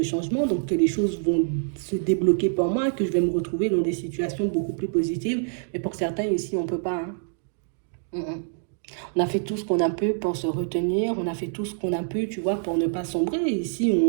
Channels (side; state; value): left; silent; digital silence